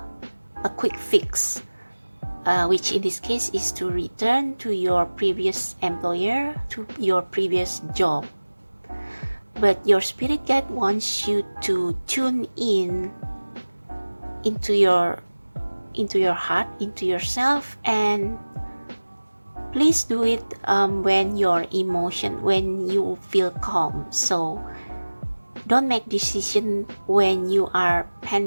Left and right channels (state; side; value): inverted; both; correlation -1.00